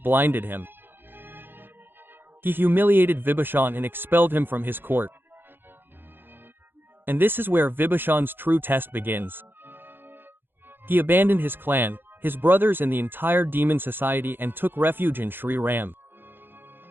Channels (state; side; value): late; left; 0.099 ms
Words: him. He humiliated Vibhishan and expelled him from his court. And this is where Vibhishan's true test begins. He abandoned his clan, his brothers and the entire demon society and took refuge in Shri Ram.